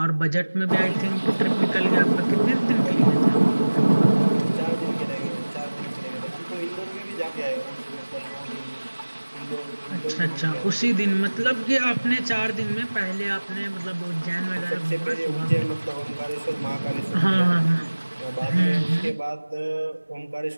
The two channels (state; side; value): inverted; both; correlation -1.00